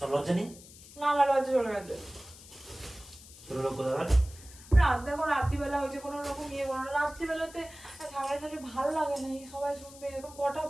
লজ্জা নেই? না, আমার লজ্জা চলে গেছে। ছোট লোক কোথাকার। রাত দেখো, রাত্রিবেলা হয়েছে, কোনো রকম ইয়ে করো না। রাত্রিবেলাতে ঝাড়াঝাড়ি ভালো লাগে না, এই সবাই শুনবে। এখন কটা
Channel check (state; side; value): noise; left; hiss, 19 dB below the sound